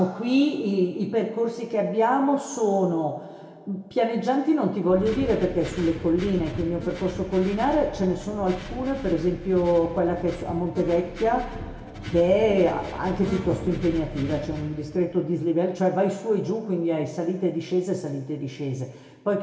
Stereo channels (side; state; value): both; identical; correlation 1.00